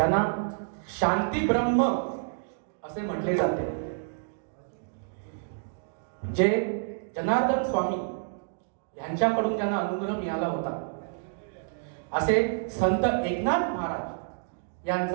शांती ब्रह्म असे म्हटले जाते, जे जनार्दन स्वामी यांच्याकडून त्यांना अनुग्रह मिळाला होता, असे संत एकनाथ महाराज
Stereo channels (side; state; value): left; silent; digital silence